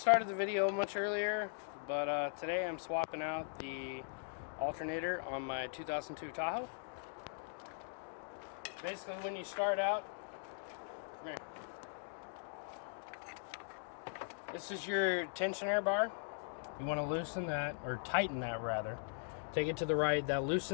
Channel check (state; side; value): silent; right; digital silence